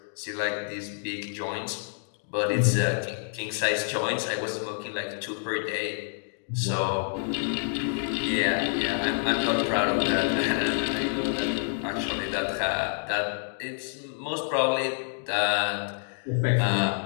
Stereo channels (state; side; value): silent; right; 59 dB below the other